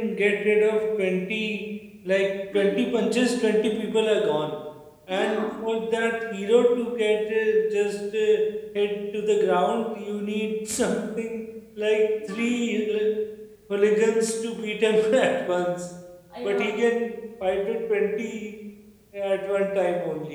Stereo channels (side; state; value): both; identical; correlation 1.00